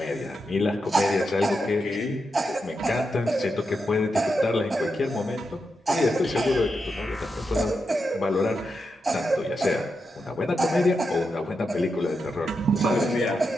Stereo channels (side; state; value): both; normal; correlation 0.86